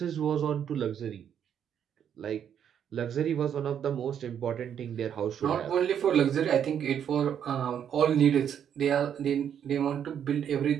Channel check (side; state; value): left; quieter; 8.8 dB